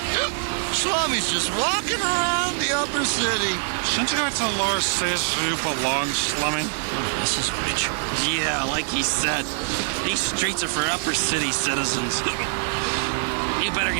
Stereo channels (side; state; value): left; silent; 63 dB below the other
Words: Slummy's just walking around the upper city. Shouldn't you go to the lower cities where you belong, Slummy? Oh, this is rich. Yeah, like he said, these streets are for upper city citizens. You better